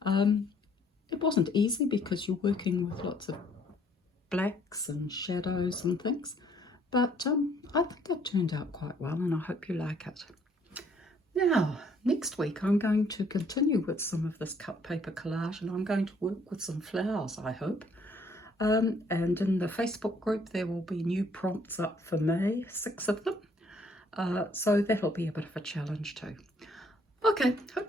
And it wasn't easy because you're working with lots of blacks and shadows and things, but I think it turned out quite well, and I hope you like it. Now, next week I'm going to continue with some of this cut paper collage, and I'm going to work with some flowers, I hope. And in the Facebook group there will be new prompts up for May, 6 of them. So that'll be a bit of a challenge too. Okay, hope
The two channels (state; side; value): normal; both; correlation 0.64